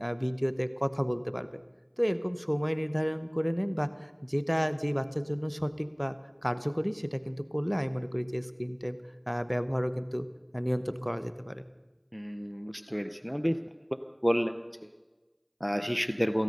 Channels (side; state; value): both; identical; correlation 1.00